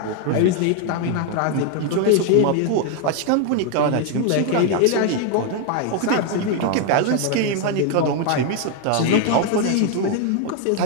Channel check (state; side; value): different; both; correlation 0.01